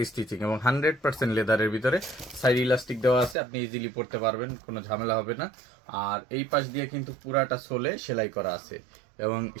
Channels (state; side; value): drops out; left; at 3.4 s